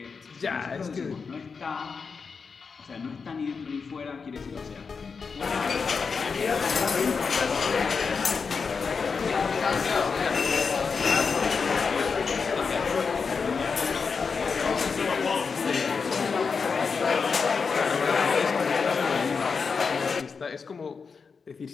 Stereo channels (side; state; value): right; quieter; 5.3 dB